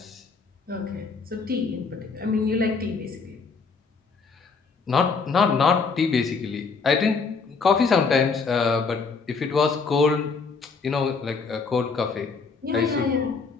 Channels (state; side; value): quieter; right; 4.8 dB